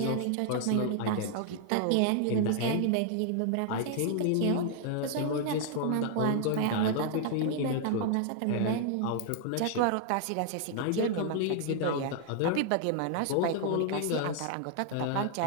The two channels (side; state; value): both; different; correlation 0.00